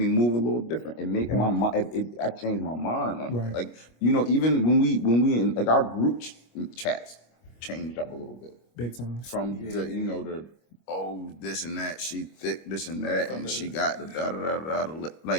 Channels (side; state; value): right; late; 25 ms